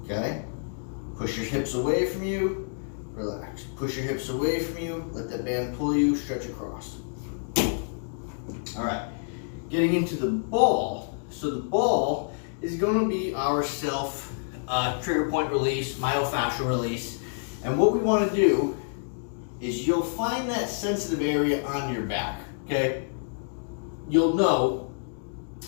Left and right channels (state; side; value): silent; right; digital silence